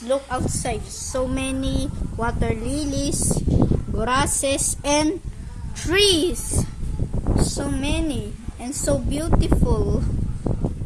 look outside. So many water lilies, grasses, and trees. So many and so beautiful.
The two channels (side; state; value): both; identical; correlation 1.00